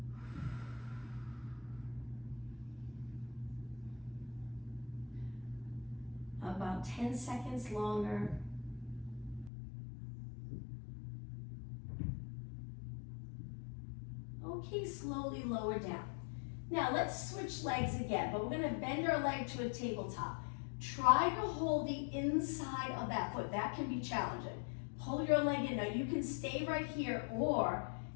About 10 seconds longer. Okay, slowly lower down. Now let's switch legs again, but we're gonna bend our leg to a tabletop. Try to hold the inside of that foot. That can be challenging. Pull your leg in. Now you can stay right here, or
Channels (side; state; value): right; drops out; at 9.5 s